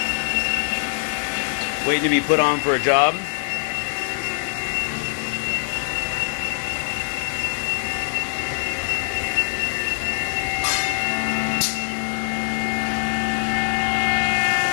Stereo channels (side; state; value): right; silent; digital silence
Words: waiting to be put on for a job.